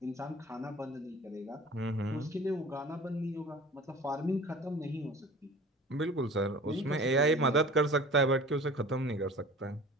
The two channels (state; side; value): normal; both; correlation 0.42